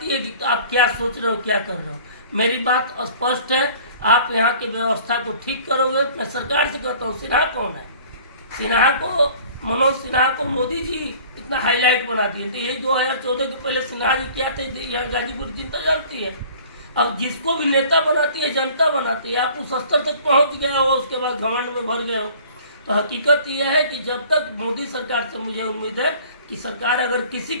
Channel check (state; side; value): inverted; both; correlation -0.49